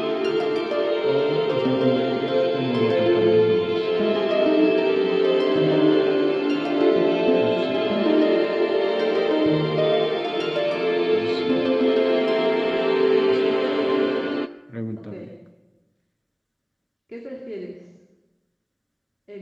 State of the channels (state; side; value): identical; both; correlation 1.00